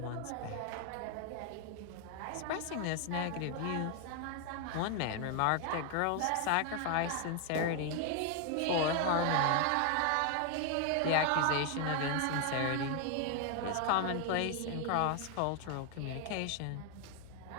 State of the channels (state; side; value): different; both; correlation 0.00